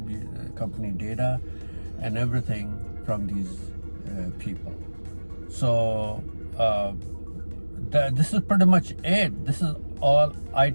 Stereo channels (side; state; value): both; inverted; correlation -1.00